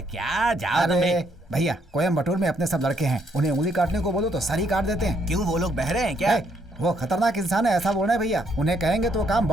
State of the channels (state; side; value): normal; both; correlation 0.72